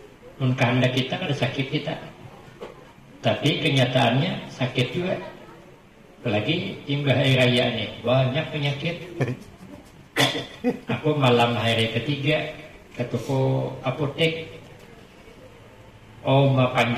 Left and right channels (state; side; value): identical; both; correlation 1.00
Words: Mun kehendak kita kada sakit kita, tapi kenyataannya sakit juga. Apalagi timbah hari raya nih, banyak penyakit. Aku malam hari ketiga ke toko apotek,